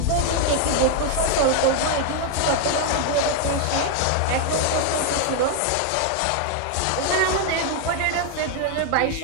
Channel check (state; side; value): different; both; correlation 0.00